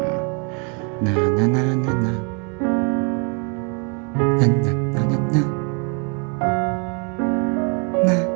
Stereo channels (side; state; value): left; quieter; 36.4 dB